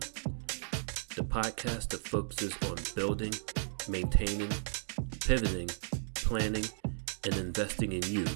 the podcast that focuses on building, maintaining, pivoting, planning, and investing in you,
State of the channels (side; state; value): left; silent; digital silence